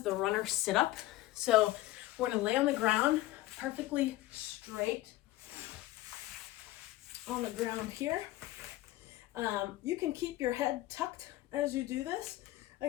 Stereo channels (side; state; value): right; quieter; 16.6 dB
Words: the Runner Situp. So we're gonna lay on the ground, perfectly straight on the ground here. You can keep your head tucked as you do this.